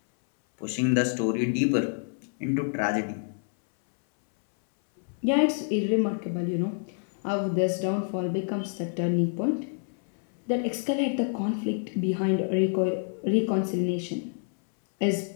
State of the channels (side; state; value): right; silent; 60 dB below the other